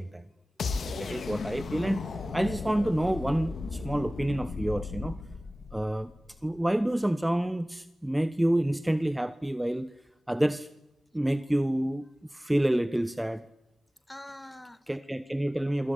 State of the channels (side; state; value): both; normal; correlation 0.98